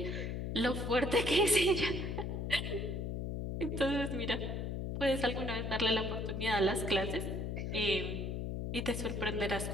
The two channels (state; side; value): noise; left; hum, 3 dB below the sound